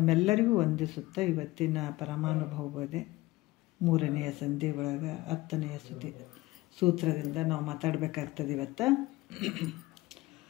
ವಂದಿಸುತ್ತಾ, ಇವತ್ತಿನ ಪರಮಾನುಭವ ಬೋಧೆ 3ನೆಯ ಸಂಧಿ ಒಳಗೆ 10ನೆಯ ಸೂತ್ರದಿಂದ ನಾವು ಮಾತಾಡಬೇಕಾಗ್ತದೆ ಇವತ್ತು.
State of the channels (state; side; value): quieter; right; 19.4 dB